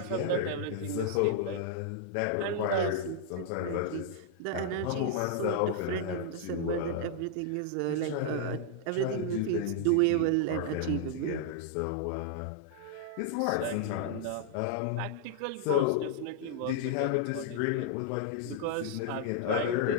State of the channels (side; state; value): both; different; correlation -0.01